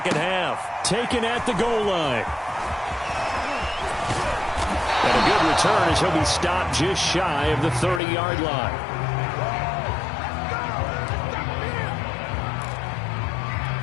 half. Taken at the goal line. And a good return as he'll be stopped just shy of the 30-yard line.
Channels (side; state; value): right; drops out; at 8.0 s